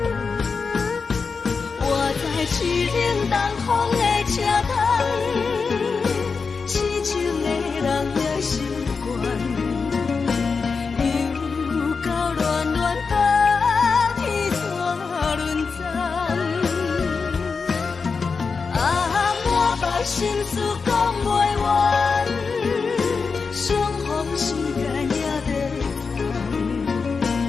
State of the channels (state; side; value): quieter; right; 5.0 dB